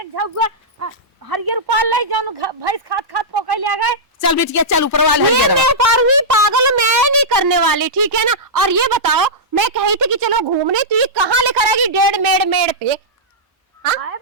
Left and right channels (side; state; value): both; normal; correlation -0.12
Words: झुग्गा हरियर पाल ले जाऊं भैंस खात पोकै ले गए। चल बिटिया चल ऊपरवा ले ये मैं पारूंगी पागल, मैं नहीं करने वाली, ठीक है ना। और ये बताओ मैं कही थी कि चलो घूमने, तू ये कहाँ लेकर आएगी 1.5 मेड़ पे? आए